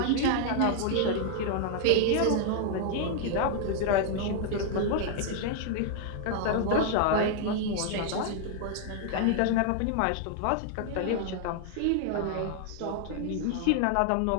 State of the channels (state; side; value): different; both; correlation 0.00